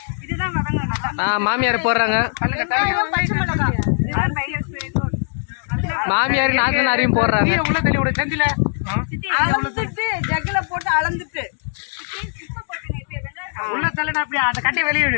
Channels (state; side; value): silent; right; digital silence